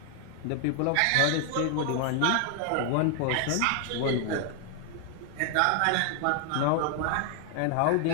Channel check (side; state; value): both; different; correlation 0.00